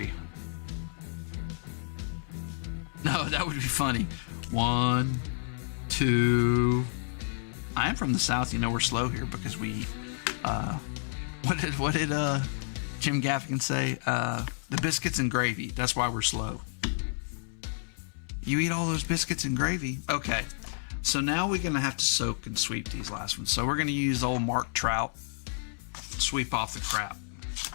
No, that would be funny. 1, 2. I am from the South. You know we're slow here because we, what did Jim Gaffigan say? The biscuits and gravy. That's why we're slow. You eat all those biscuits and gravy. Okay. So now we're going to have to soak and sweep these last ones. So we're going to use old Mark Trout. Sweep off the crap.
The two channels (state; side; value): silent; right; 58 dB below the other